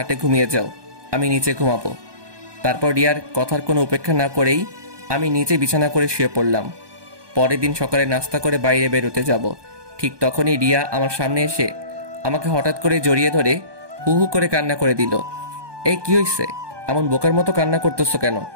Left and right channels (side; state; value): left; late; 1.2 ms